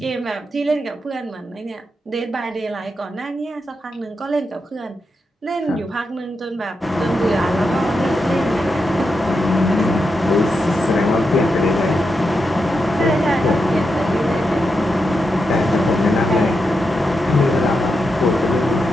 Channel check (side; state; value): both; normal; correlation 0.86